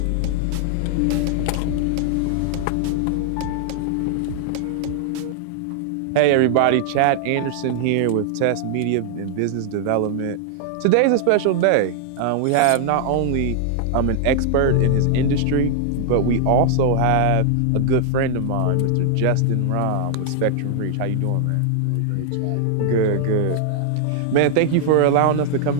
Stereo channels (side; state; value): both; different; correlation -0.01